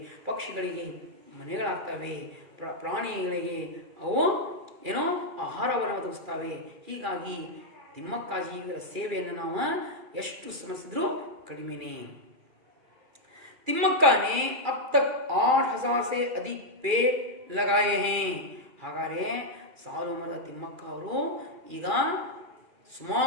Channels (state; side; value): late; left; 2.3 ms